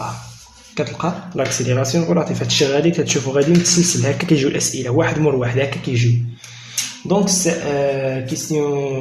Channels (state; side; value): identical; both; correlation 1.00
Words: كتلقى لاكسيليراسيون غولاتيف. هادشي غادي كتشوفو غادي متسلسل هكا، كيجيو الاسئله واحد مور واحد هكا كيجيو. دونك